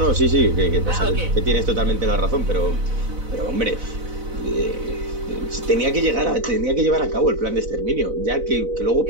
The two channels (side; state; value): left; late; 4.0 ms